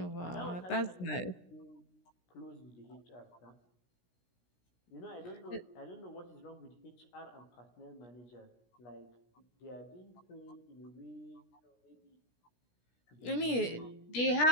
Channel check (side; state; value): right; late; 17 ms